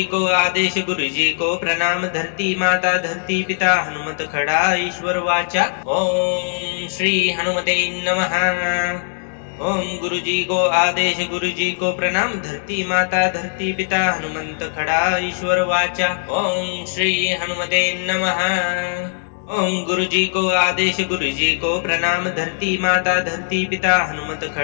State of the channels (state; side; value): silent; right; digital silence